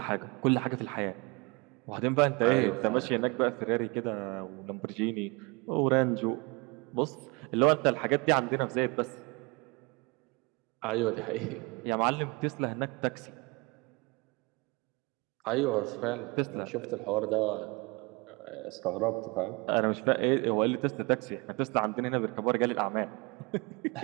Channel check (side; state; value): left; quieter; 27.3 dB